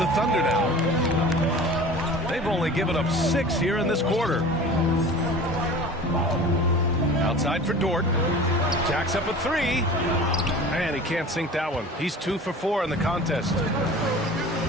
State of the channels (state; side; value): normal; both; correlation 0.40